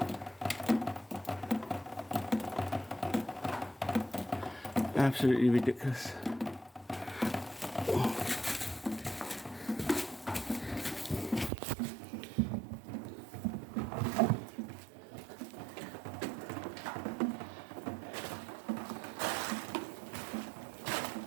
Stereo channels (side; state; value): left; drops out; at 11.5 s